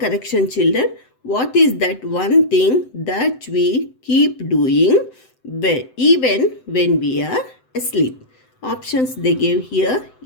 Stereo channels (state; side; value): late; right; 7.8 ms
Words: children. What is that one thing that we keep doing even when we are asleep? Options they gave here: